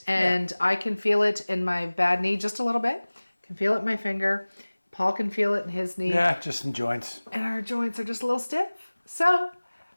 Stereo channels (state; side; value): inverted; both; correlation -1.00